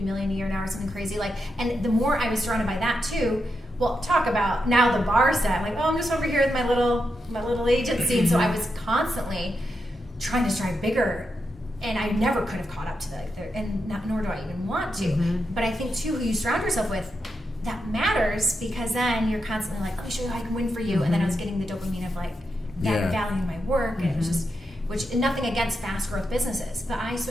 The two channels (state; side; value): normal; both; correlation 0.85